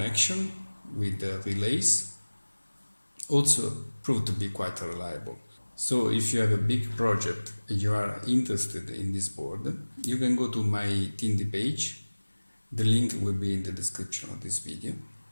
with the relays also proved to be quite reliable. So if you have a big project and you are interested in this board, you can go to my Tindie page. The link will be in the description of this video,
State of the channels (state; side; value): inverted; both; correlation -1.00